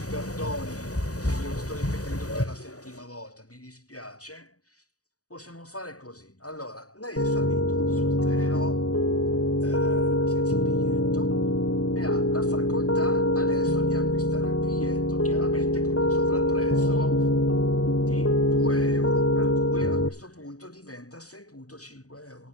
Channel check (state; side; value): late; right; 0.66 ms